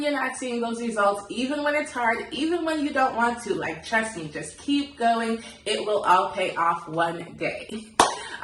you're not seeing those results, even when it's hard, even when you don't want to. Like, trust me, just keep going. It will all pay off one day.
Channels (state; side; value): identical; both; correlation 1.00